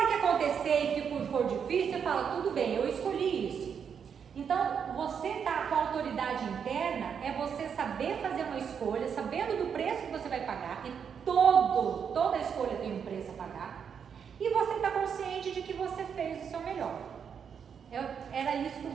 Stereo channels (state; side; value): quieter; left; 7.2 dB